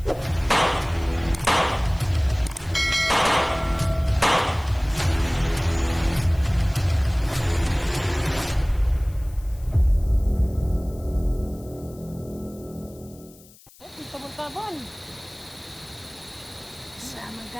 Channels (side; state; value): left; noise; hiss, 24 dB below the sound